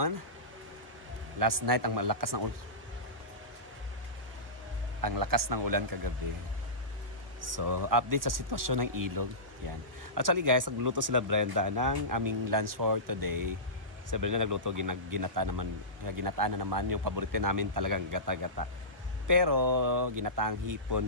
Last night ang malakas ng ulan. Ang lakas ng ulan kagabi. So, update sa sitwasyon ng ilog. Yan. Actually guys, nagluto sila Brenda ng aming lunch for today. Sa Brenda nagluto ginataan na naman yung paborito namin talagang gata-gata. Pero ginataang hipon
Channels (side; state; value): left; late; 1.2 ms